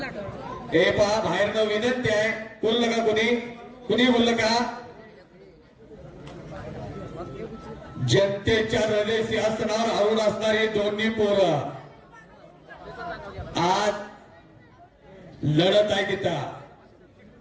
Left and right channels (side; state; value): both; identical; correlation 1.00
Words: हे पहा बाहेरनं विनंती आहे. बोललं का कुणी बोललं का? जनतेच्या हृदय सिंहासनावर आवड असणारी दोन्ही पोरं आज लढत आहे तिथं.